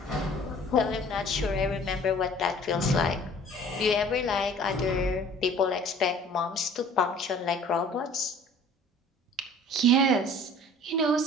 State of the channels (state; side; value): normal; both; correlation 0.49